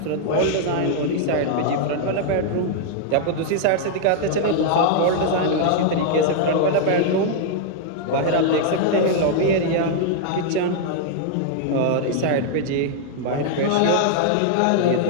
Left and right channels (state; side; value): different; both; correlation -0.01